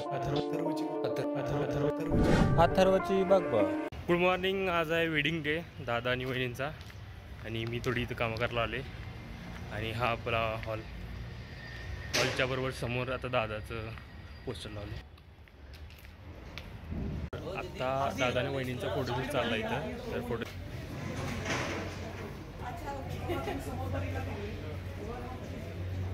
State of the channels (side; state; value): both; identical; correlation 1.00